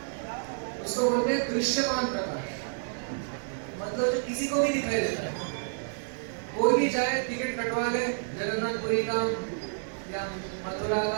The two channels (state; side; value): silent; left; 58 dB below the other